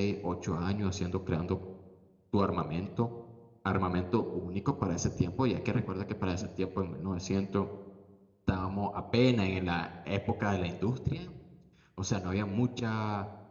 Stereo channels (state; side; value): identical; both; correlation 1.00